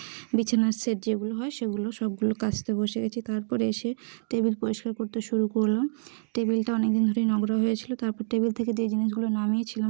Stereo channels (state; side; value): silent; left; digital silence